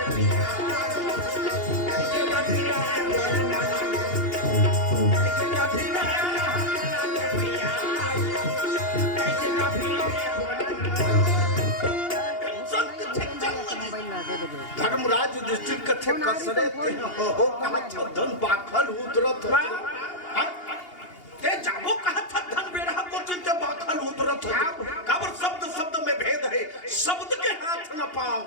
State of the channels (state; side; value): late; right; 2.8 ms